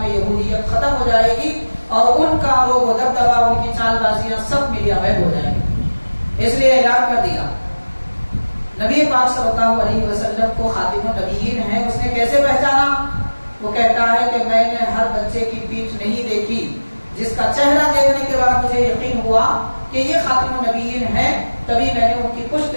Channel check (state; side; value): inverted; both; correlation -1.00